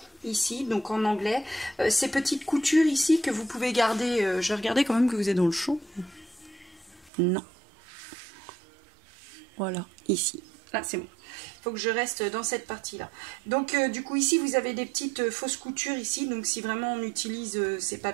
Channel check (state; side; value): drops out; left; at 7.1 s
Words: ici, donc en anglais. Ces petites coutures ici que vous pouvez garder. Je vais regarder quand même que vous êtes dans le chaud. Non. Voilà, ici. Là, c'est bon. Il faut que je reste dans cette partie-là. Donc, du coup, ici, vous avez des petites fausses coutures ici. Donc, si vraiment on utilise ces